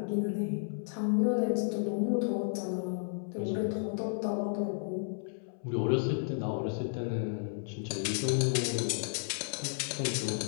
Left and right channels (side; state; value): right; silent; 56 dB below the other